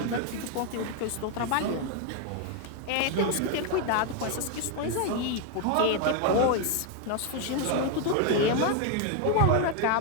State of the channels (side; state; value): both; different; correlation 0.01